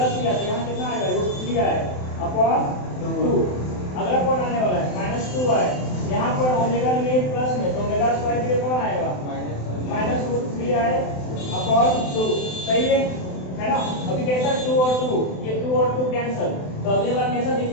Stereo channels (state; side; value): late; right; 27 ms